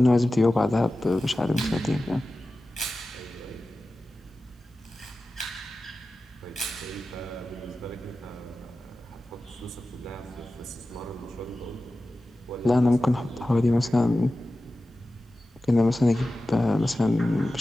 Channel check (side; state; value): both; normal; correlation 0.95